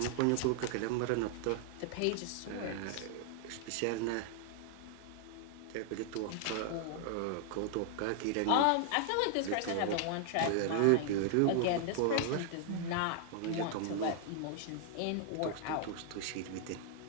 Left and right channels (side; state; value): both; different; correlation 0.00